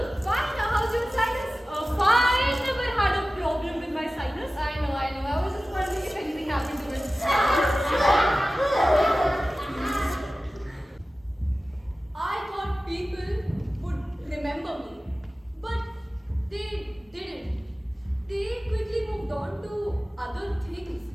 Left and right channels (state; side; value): normal; both; correlation 0.96